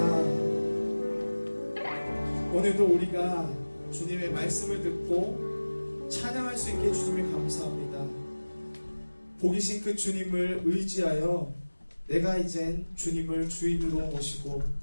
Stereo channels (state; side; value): inverted; both; correlation -1.00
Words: 오늘도 우리가 주님의 말씀을 듣고 찬양할 수 있게 주님을 감사합니다. 복이신 그 주님을 의지하여 내가 이젠 주님을 주인으로 모시고